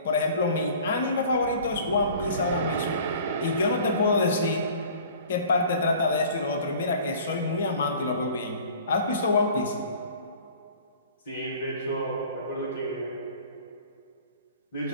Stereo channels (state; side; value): inverted; both; correlation -0.47